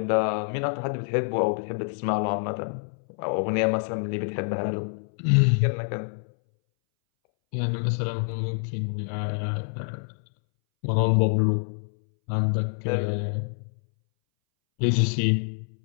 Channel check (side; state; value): right; silent; 61 dB below the other